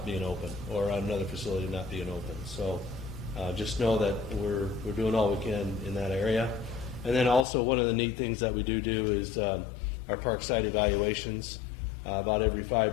being open or another facility not being open. So just know that we're doing all we can in that area. And then also one of the neat things that we do is our park site evaluations. About every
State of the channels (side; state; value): right; drops out; at 7.5 s